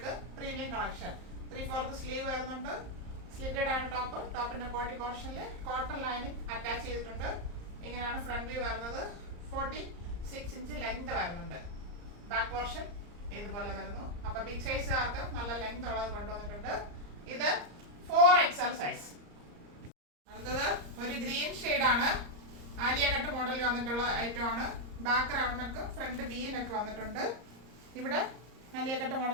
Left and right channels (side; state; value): left; late; 34 ms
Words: premium collection. 3/4 sleeve വരുന്നുണ്ട്. സ്ലിറ്റഡ് ആണ് ടോപ്പ്. ടോപ്പിന്റെ ബോഡി പോർഷനിൽ കോട്ടൺ ലൈനിങ് അറ്റാച്ച് ചെയ്തിട്ടുണ്ട്. ഇങ്ങനെയാണ് ഫ്രണ്ട് വ്യൂ വരുന്നത്. 46 ഇഞ്ച് ലെങ്ത് വരുന്നുണ്ട്. ബാക്ക് പോർഷൻ ഇതുപോലെ വരുന്നു. അപ്പൊ ബിഗ് സൈസുകാർക്ക് നല്ല ലെങ്ത് ഉള്ളത് കൊണ്ടുവന്നിട്ടുണ്ട്. ഇത് 4XL സൈസ്. അടുത്തത് ഒരു ഗ്രീൻ ഷെയ്ഡാണ്. ആലിയ കട്ട് മോഡലിൽ വന്നിട്ടുള്ള ഐറ്റം ആണ്. Back round neck, front V neck വന്നിട്ടുണ്ട്. ഇവിടെ ആലിയ കട്ട്